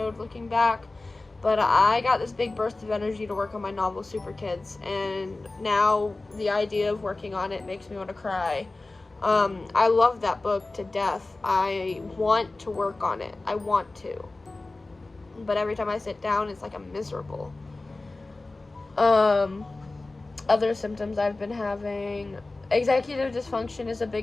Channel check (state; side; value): quieter; right; 3.2 dB